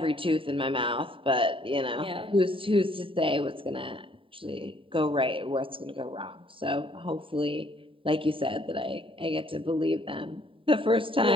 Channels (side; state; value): left; late; 0.25 ms